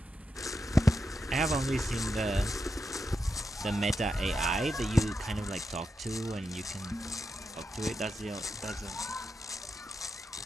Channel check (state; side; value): normal; both; correlation 0.86